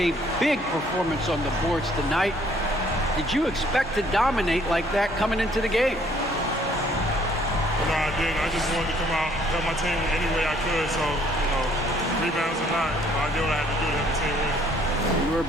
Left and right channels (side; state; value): both; normal; correlation 0.62